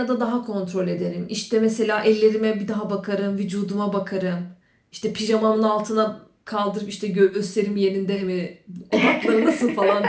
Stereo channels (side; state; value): both; identical; correlation 1.00